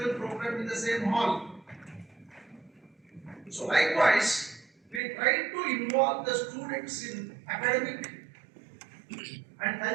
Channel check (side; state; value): left; drops out; at 5.0 s